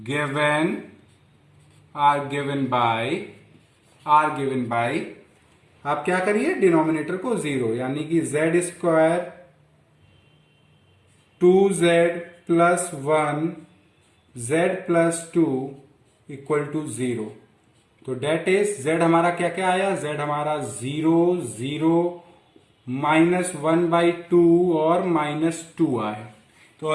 given by आप क्या करिए, डिनोमिनेटर को 0, यानी कि z square 2z plus 1 z plus 2 equal to 0। तो डेट इज z हमारा क्या क्या आया, z हमारा 0 0 -1/2 और -2 आया।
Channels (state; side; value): identical; both; correlation 1.00